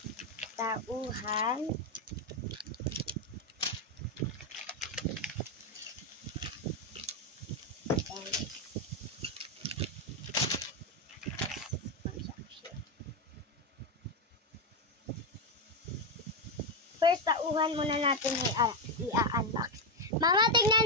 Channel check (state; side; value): normal; both; correlation 0.07